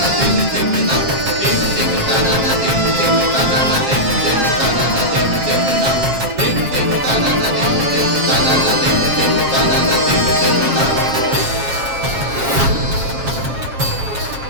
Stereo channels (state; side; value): late; left; 7.4 ms